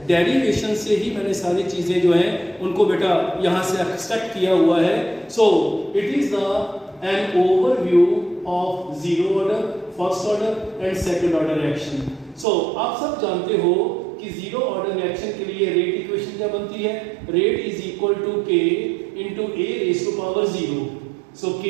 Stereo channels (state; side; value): drops out; left; at 12.5 s